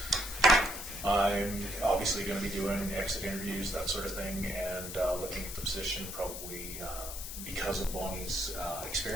I'm obviously going to be doing exit interviews, that sort of thing, and looking at the position probably because of Bonnie's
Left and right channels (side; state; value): left; noise; hiss, 8 dB below the sound